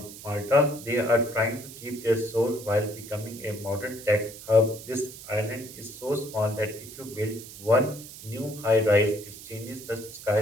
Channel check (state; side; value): noise; right; hiss, 15 dB below the sound